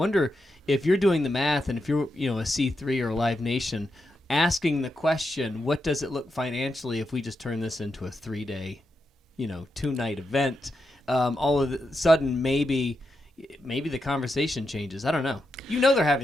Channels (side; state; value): both; normal; correlation 0.86